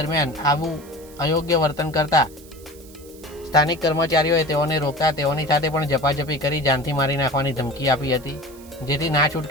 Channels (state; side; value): noise; right; hiss, 22 dB below the sound